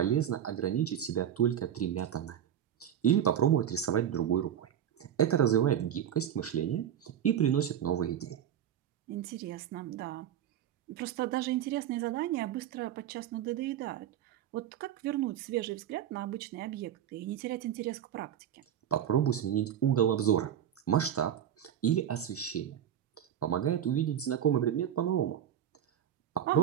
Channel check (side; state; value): left; quieter; 10.1 dB